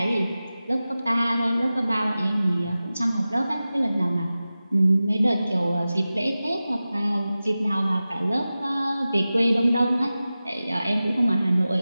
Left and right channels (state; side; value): inverted; both; correlation -0.95